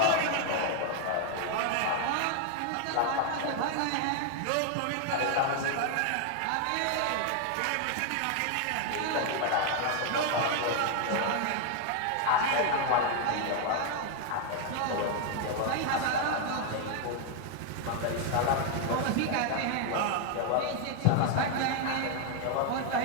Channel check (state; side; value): different; both; correlation 0.00